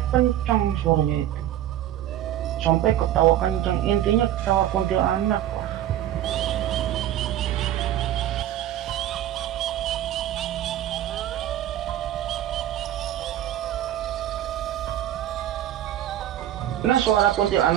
kencang suaranya itu. Sampai ketawa kencang, intinya ketawa kuntilanak. Nah suara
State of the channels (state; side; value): quieter; left; 12.3 dB